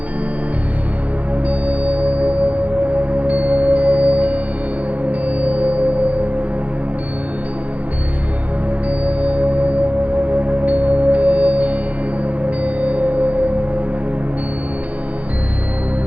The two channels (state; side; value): late; left; 0.069 ms